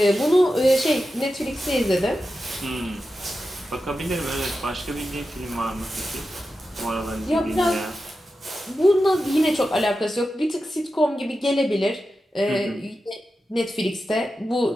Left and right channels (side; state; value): both; normal; correlation 0.91